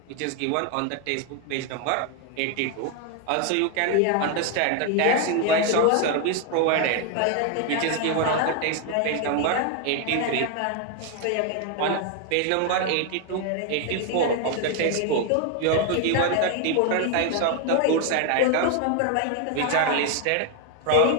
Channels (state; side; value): different; both; correlation 0.01